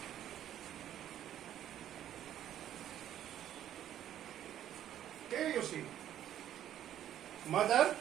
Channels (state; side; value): quieter; left; 11.2 dB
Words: you see, mother